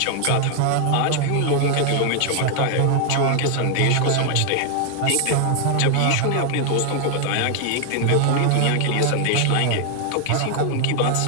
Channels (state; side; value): different; both; correlation 0.00